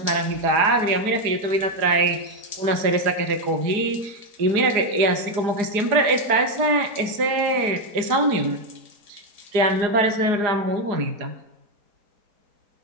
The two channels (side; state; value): left; late; 4.8 ms